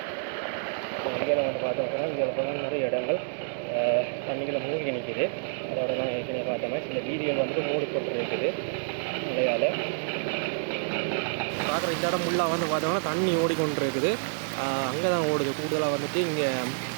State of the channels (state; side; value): silent; left; 59 dB below the other